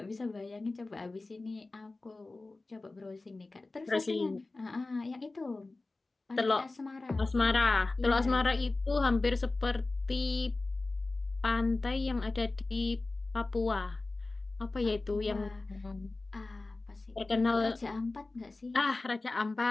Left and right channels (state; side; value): quieter; right; 3.3 dB